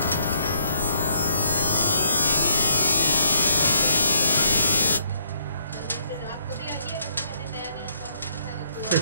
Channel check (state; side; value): inverted; both; correlation -0.71